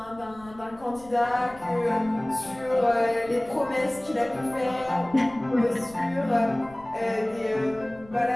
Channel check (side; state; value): left; noise; rumble, 23 dB below the sound